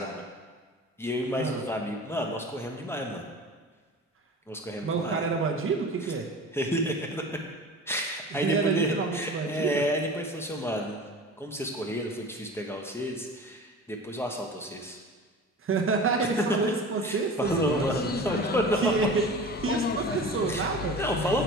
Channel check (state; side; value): normal; both; correlation 0.36